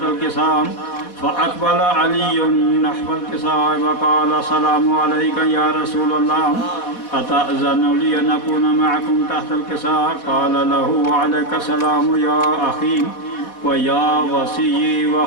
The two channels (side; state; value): right; late; 4.1 ms